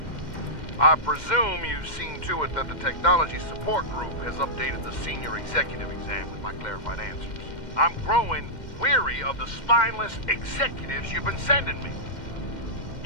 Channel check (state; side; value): late; right; 2.1 ms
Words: I presume you've seen to it that the Technology Support Group has updated the Senior Executive exam with my clarified answers. I'm growing weary of the spineless executives you've been sending me.